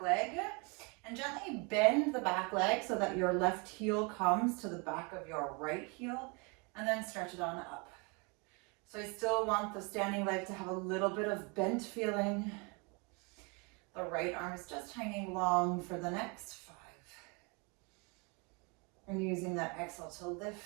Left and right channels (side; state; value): left; quieter; 31.2 dB